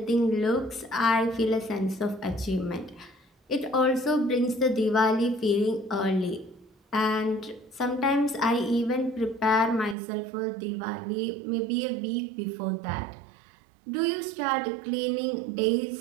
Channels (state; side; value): drops out; left; at 10.0 s